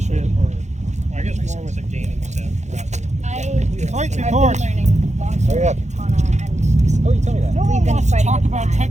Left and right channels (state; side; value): late; left; 0.33 ms